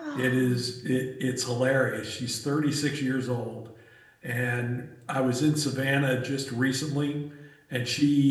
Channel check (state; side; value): identical; both; correlation 1.00